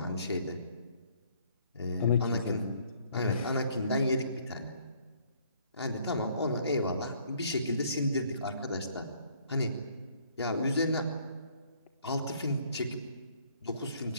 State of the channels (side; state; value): both; inverted; correlation -0.62